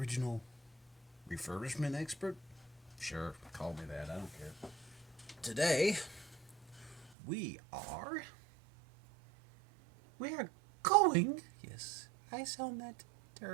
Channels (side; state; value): left; drops out; at 7.2 s